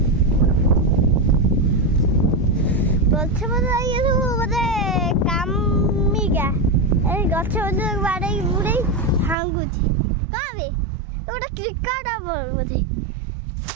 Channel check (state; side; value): drops out; left; at 9.3 s